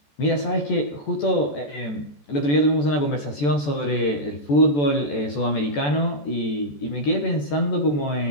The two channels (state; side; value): late; right; 14 ms